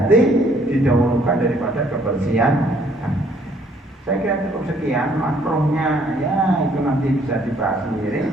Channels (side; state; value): both; normal; correlation 0.63